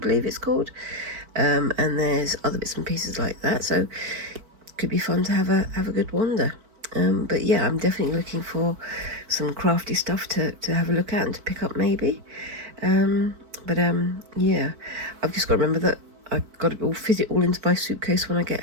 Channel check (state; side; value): late; left; 4.5 ms